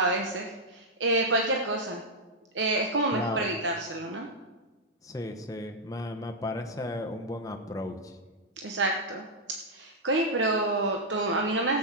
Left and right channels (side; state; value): both; normal; correlation -0.04